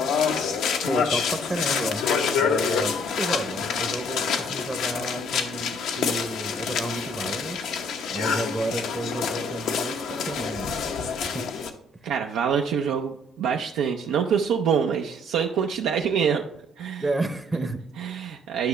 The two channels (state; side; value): normal; both; correlation 0.61